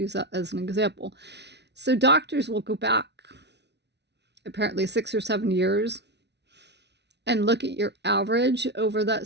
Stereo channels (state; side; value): late; left; 0.50 ms